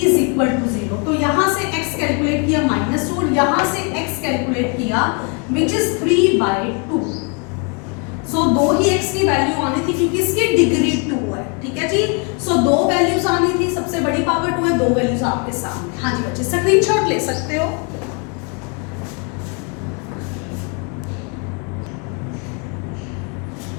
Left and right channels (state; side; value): quieter; right; 35.6 dB